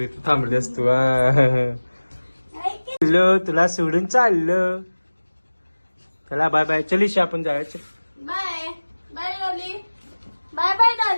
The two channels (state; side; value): inverted; both; correlation -1.00